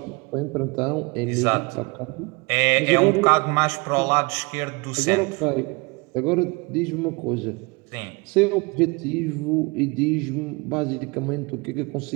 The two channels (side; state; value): left; quieter; 27.2 dB